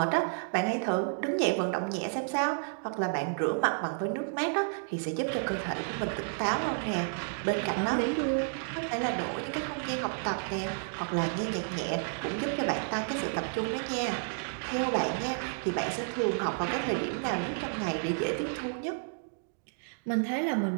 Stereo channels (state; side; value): silent; left; digital silence